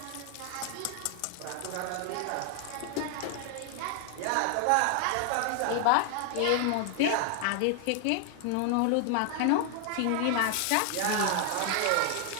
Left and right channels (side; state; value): both; different; correlation 0.00